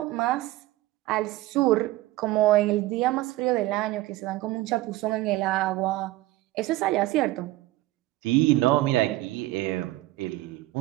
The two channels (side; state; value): left; quieter; 17.2 dB